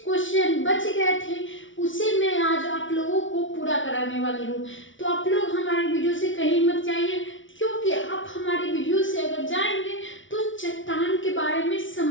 क्वेश्चन बच गए थे, उसे मैं आज आप लोगों को पूरा कराने वाली हूँ। तो आप लोग हमारे वीडियो से कहीं मत जाइए, क्योंकि आप हमारे वीडियो से अगर जाएंगे तो चट्टान के बारे में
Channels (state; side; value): late; right; 0.56 ms